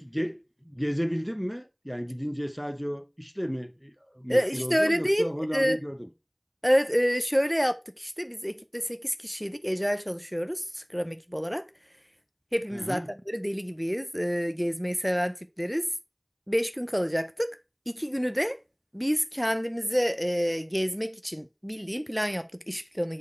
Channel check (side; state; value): both; identical; correlation 1.00